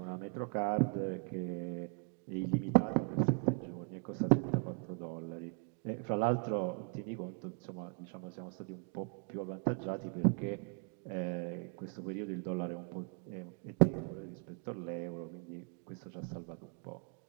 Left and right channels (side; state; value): left; quieter; 38.5 dB